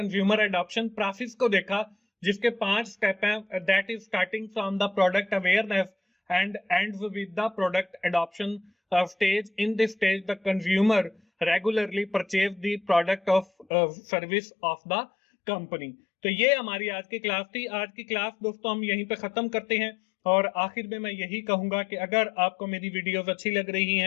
एडॉप्शन प्रोसेस को देखा, जिसके 5 स्टेप हैं। That is starting from the product awareness and ends with the product adoption stage. In this stage the consumer regularly purchase the product of service of the company. तो ये हमारी आज की class थी। आज की क्लास दोस्तों हम यहीं पे खत्म करते हैं, और आखिर में मैं यही कहूंगा कि अगर आपको मेरी वीडियोस अच्छी लग रही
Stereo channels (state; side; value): drops out; right; at 13.7 s